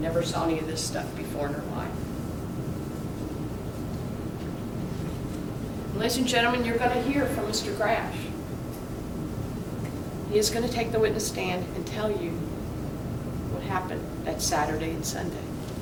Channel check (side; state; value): both; identical; correlation 1.00